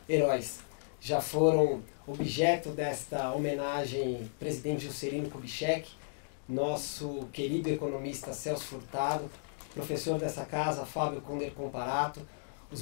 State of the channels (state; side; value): silent; right; digital silence